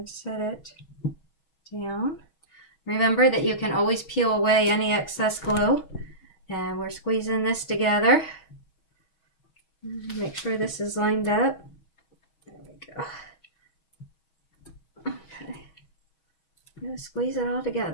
set it down. Remember that you can always peel away any excess glue. And we're squeezing this together. Make sure this is lined up. There we go. Okay. Just squeeze it all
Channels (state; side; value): late; right; 6.3 ms